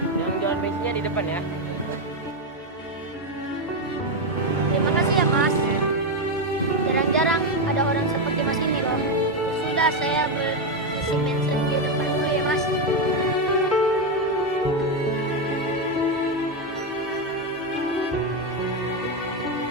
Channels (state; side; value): normal; both; correlation 0.07